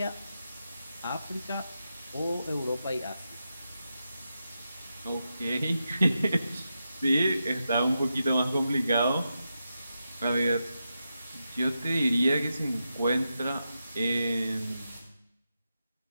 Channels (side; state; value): both; inverted; correlation -0.88